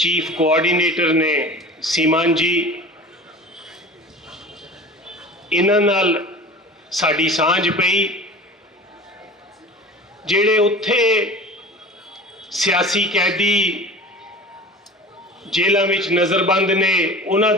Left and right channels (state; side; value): normal; both; correlation 0.38